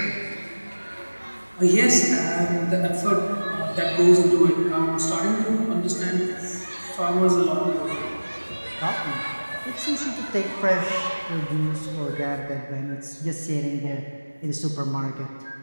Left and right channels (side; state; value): both; inverted; correlation -1.00